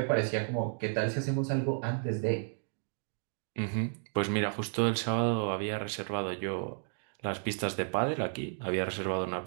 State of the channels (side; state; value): left; silent; 56 dB below the other